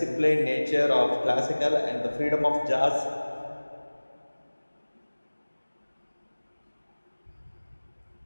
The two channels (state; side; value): inverted; both; correlation -1.00